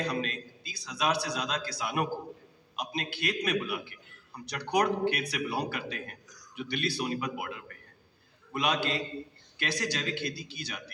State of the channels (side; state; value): both; identical; correlation 1.00